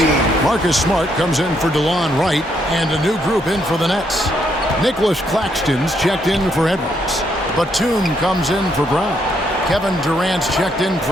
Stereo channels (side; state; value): both; normal; correlation 0.74